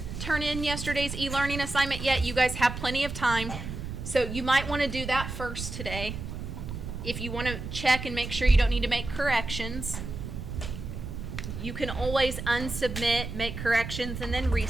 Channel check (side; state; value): right; noise; rumble, 7 dB below the sound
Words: turn in yesterday's e-learning assignment yet, you guys have plenty of time. So you might want to do that first today. If you want to check and make sure you don't need to make corrections, you can always unsubmit, make corrections, and then